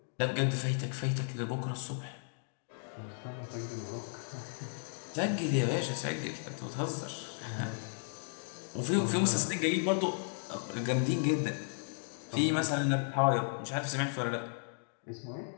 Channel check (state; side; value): silent; right; digital silence